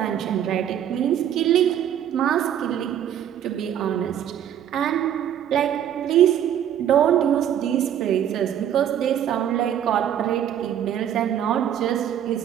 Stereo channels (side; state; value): left; quieter; 10.1 dB